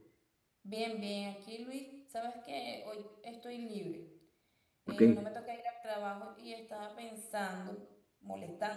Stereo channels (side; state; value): both; identical; correlation 1.00